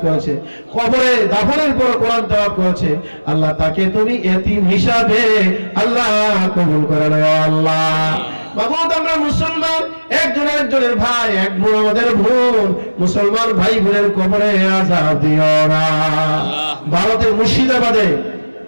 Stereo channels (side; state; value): both; inverted; correlation -1.00